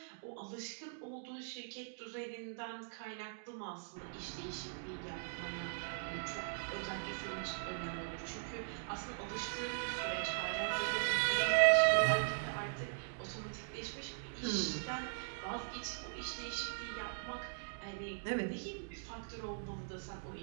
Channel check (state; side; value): silent; left; digital silence